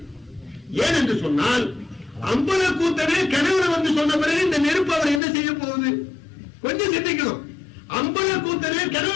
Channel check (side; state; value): right; drops out; at 5.2 s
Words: ஏன் என்று சொன்னால், அம்பல கூத்தனே கனவுல வந்து சொன்ன பிறகு இந்த நெருப்பு அவர் என்ன செய்ய போகுது? கொஞ்சம் சிந்திக்கணும். அம்பல கூத்தனே